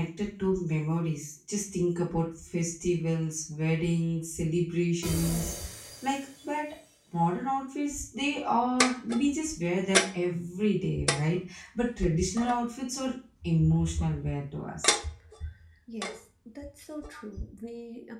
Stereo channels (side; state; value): both; identical; correlation 1.00